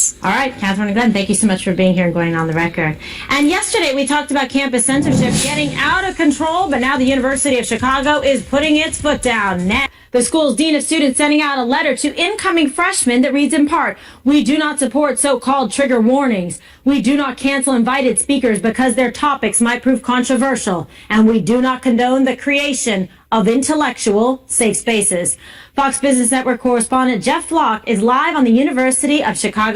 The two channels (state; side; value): identical; both; correlation 1.00